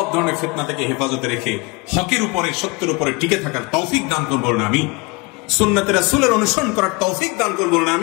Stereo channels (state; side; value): quieter; right; 26.3 dB